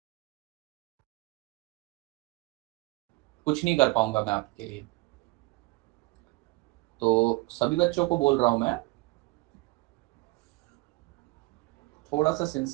कुछ नहीं कर पाऊंगा मैं आपके लिए। तो सभी बच्चों को बोल रहा हूँ मैं, थोड़ा सा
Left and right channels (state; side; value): quieter; left; 22.8 dB